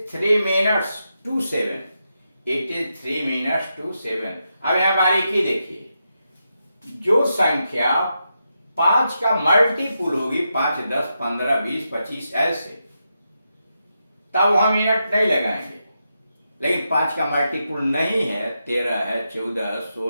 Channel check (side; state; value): both; inverted; correlation -0.86